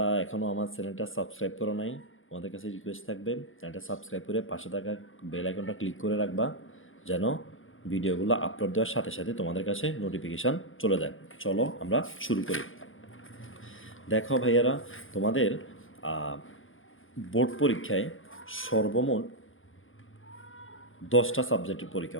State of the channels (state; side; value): late; right; 0.58 ms